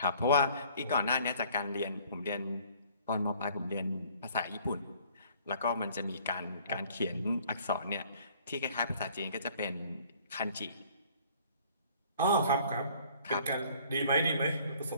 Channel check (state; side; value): inverted; both; correlation -0.57